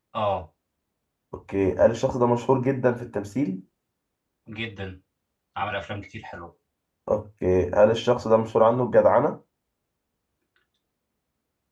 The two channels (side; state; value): both; identical; correlation 1.00